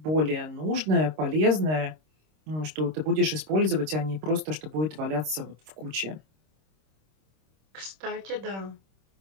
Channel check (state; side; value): late; left; 26 ms